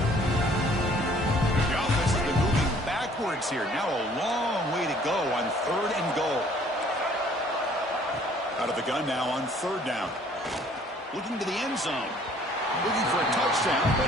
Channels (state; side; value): normal; both; correlation 0.57